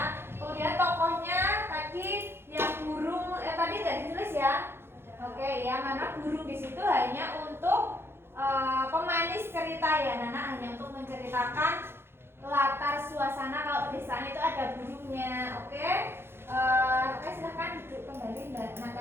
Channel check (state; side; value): late; left; 0.11 ms